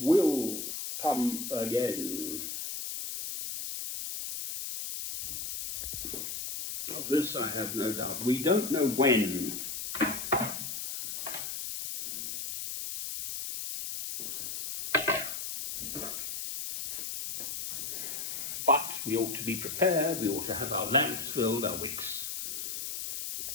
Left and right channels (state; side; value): noise; left; hiss, 5 dB below the sound